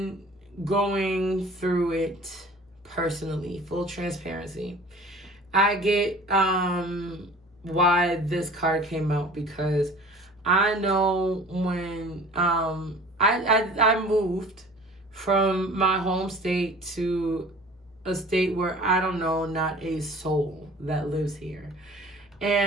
going through it personally, full transparency. I get why this card came out, because I know when I moved from my home state to a state where I don't know not a soul that lives here.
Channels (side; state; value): both; normal; correlation 0.46